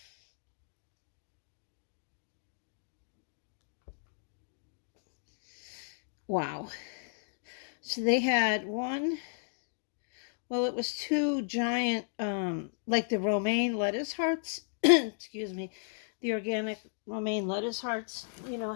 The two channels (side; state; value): right; silent; digital silence